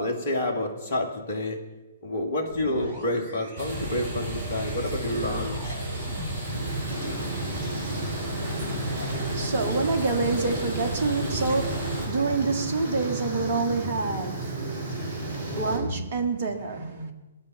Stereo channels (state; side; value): inverted; both; correlation -0.58